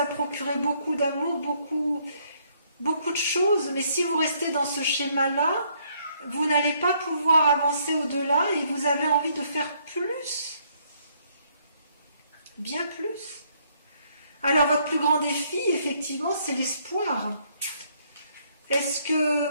procuré beaucoup d'amour, beaucoup de choses. Mais si vous restez dans ce schéma-là, vous n'allez pas pouvoir avancer au-delà et vous avez envie de faire plus. Bien plus. Alors votre plus grand défi, effectivement, c'est l'espoir. Est-ce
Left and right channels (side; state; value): both; inverted; correlation -0.68